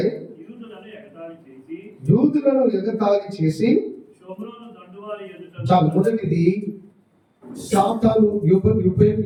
యూదులను ఎగతాళి చేసి చాలు. మొదటిది సాతాను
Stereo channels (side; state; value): both; identical; correlation 1.00